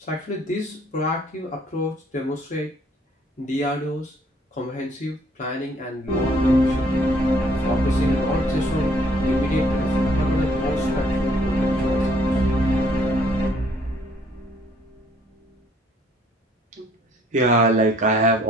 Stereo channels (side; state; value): both; normal; correlation 0.63